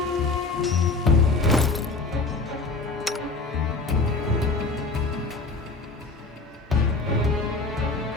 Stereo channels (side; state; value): right; quieter; 3.6 dB